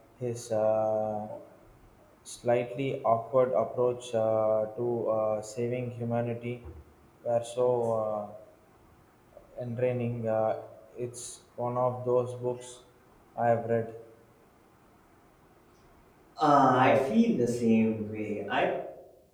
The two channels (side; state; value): both; identical; correlation 1.00